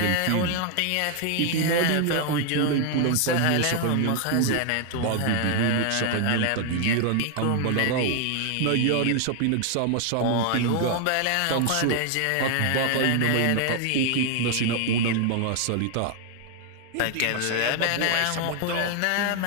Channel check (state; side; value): different; both; correlation 0.00